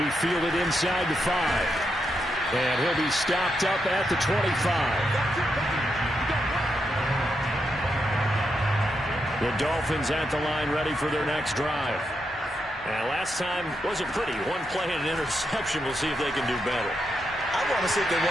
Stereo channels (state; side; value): normal; both; correlation 0.83